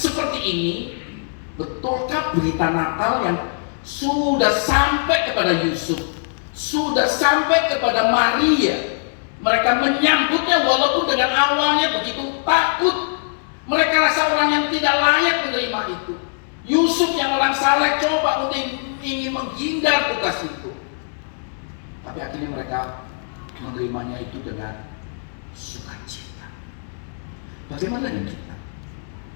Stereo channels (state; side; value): silent; right; digital silence